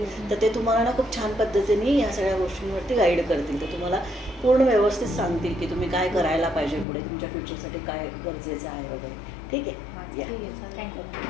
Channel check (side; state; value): right; drops out; at 6.9 s